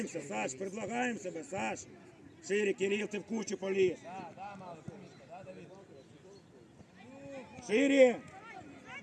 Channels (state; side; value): identical; both; correlation 1.00